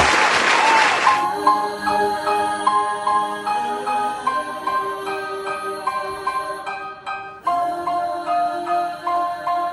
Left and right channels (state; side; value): identical; both; correlation 1.00